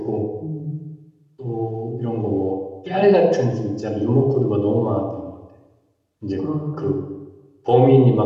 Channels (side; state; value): both; identical; correlation 1.00